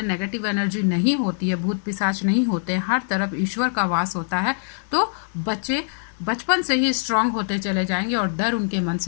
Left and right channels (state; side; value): silent; right; digital silence